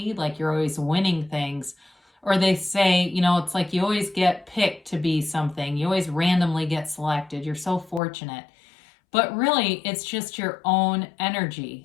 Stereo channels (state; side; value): drops out; right; at 8.0 s